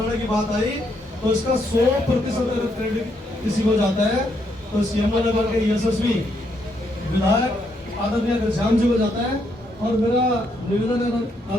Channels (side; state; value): both; normal; correlation 0.75